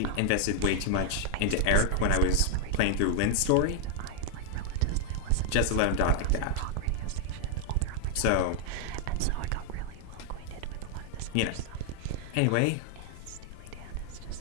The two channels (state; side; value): different; both; correlation 0.00